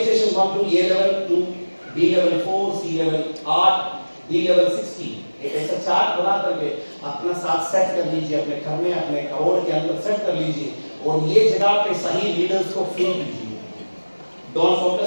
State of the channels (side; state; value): both; inverted; correlation -1.00